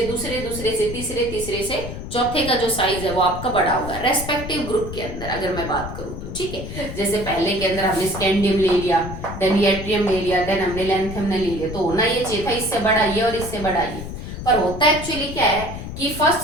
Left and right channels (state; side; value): noise; left; rumble, 8 dB below the sound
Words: दूसरे, दूसरे से तीसरे, तीसरे से चौथे का जो साइज है वो आपका बड़ा होगा रेस्पेक्टिव ग्रुप के अंदर, अगर मैं बात करूं तो, ठीक है। जैसे पहले के अंदर हमने स्कैंडियम ले लिया, देन यट्रियम ले लिया, देन हमने लैंथियम ले लिया, तो होना ये चाहिए था इससे बड़ा ये और इससे बड़ा ये, पर होता एक्चुअली क्या है कि फर्स्ट